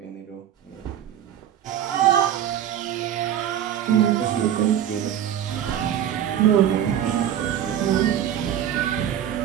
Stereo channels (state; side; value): quieter; left; 10.4 dB